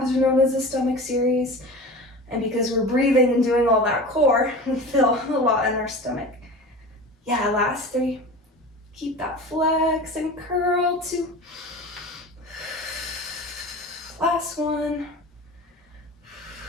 are known as a stomach series. And because we're breathing and doing all that core, we feel a lot in our stomach. Yeah, last 3. Keep that flex and curl. 2. Last one.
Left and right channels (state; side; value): normal; both; correlation 0.34